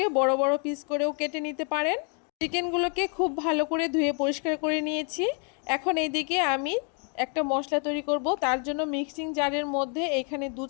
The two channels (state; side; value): quieter; right; 39.4 dB